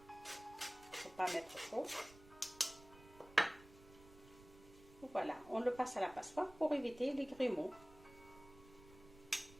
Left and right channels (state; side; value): noise; right; rumble, 21 dB below the sound